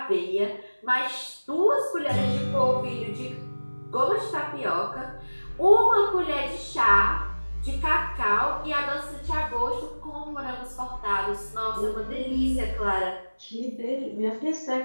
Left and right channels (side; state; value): both; inverted; correlation -1.00